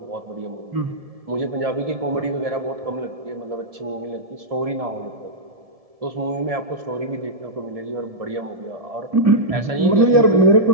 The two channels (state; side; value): late; left; 1.7 ms